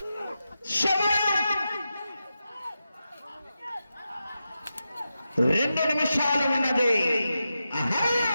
2 నిమిషాలు ఉన్నది.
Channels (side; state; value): both; inverted; correlation -0.90